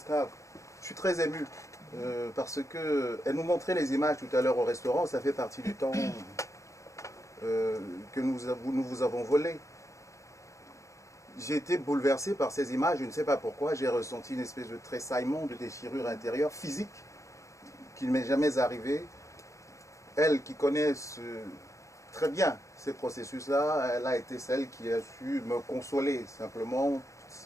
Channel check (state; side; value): late; right; 0.15 ms